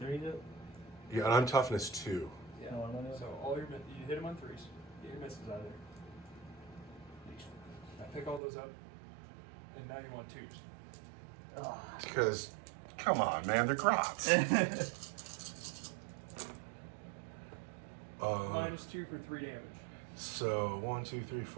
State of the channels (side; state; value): left; drops out; at 8.4 s